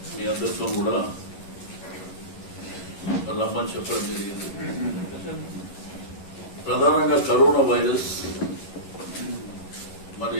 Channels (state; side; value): late; right; 11 ms